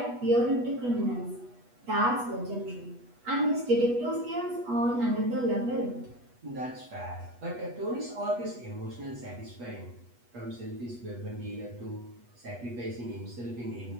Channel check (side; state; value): left; late; 8.2 ms